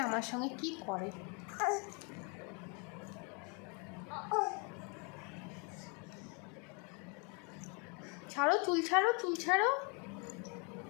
আমার সঙ্গে কি করে। ছাড়ো, চুল ছাড়ো, চুল ছাড়ো।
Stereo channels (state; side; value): quieter; right; 34.1 dB